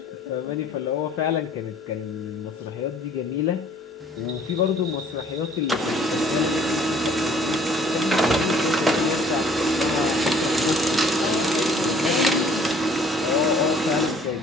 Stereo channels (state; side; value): normal; both; correlation 0.56